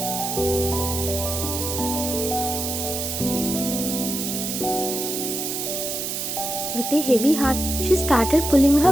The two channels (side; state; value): right; noise; hiss, 3 dB below the sound